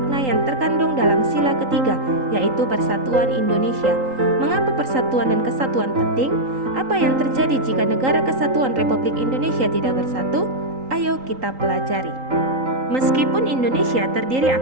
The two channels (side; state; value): left; late; 3.8 ms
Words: yang terkandung dalam sila ketiga, yaitu Persatuan Indonesia. Mengapa persatuan dan kesatuan penting? Apa yang terjadi jika negara kesatuan Republik Indonesia tidak bersatu? Ayo kita pelajari. Meskipun Indonesia terdiri